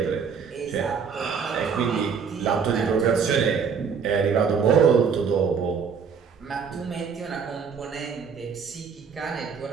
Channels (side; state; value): left; quieter; 6.2 dB